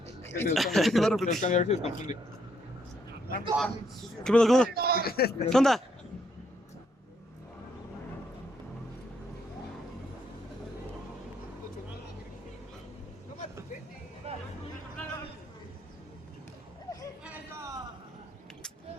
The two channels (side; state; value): both; normal; correlation 0.73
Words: ver si se confunde. ¿Qué pedo? ¿Qué onda?